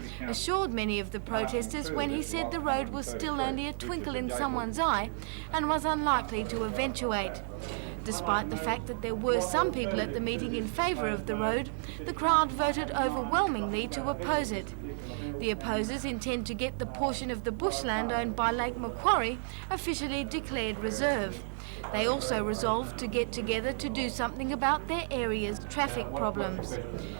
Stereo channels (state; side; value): silent; left; digital silence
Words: assured many of the protesters when he said the road was still only a twinkle in someone's eye and was unlikely to eventuate. Despite the fact that there were some people at the meeting in favour of the road, the crowd voted overwhelmingly to oppose it. The opposers intend to get the portion of the bushland owned by Lake Macquarie officially declared reserve. They also resolved to get together to do something about their area's traffic problems.